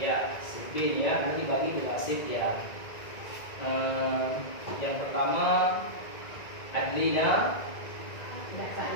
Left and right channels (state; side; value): late; right; 1.9 ms